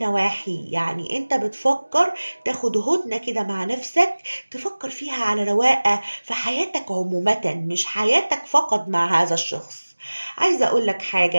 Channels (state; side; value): inverted; both; correlation -1.00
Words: يعني انت بتفكر تاخد هدنة كده مع نفسك، تفكر فيها على رواقة في حياتك عموما، مش حياتك فقط مع هذا الشخص. عايزة اقول لك